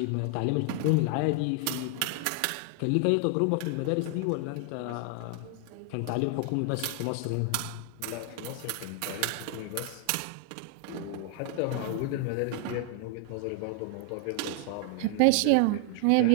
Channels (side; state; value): both; different; correlation 0.00